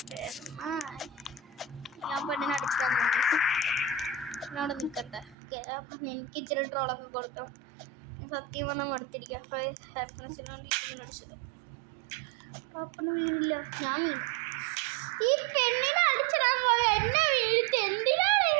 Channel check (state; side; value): drops out; left; at 5.4 s